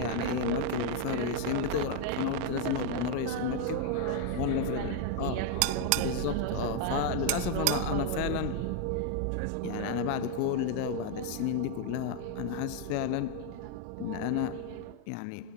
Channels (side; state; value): both; different; correlation 0.00